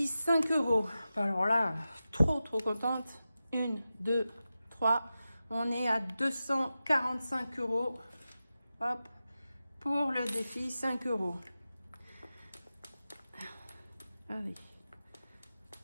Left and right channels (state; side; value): inverted; both; correlation -0.93